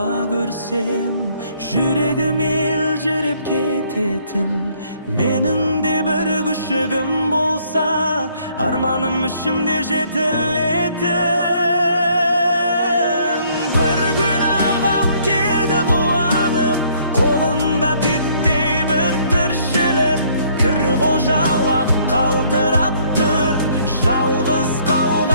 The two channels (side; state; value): both; inverted; correlation -0.63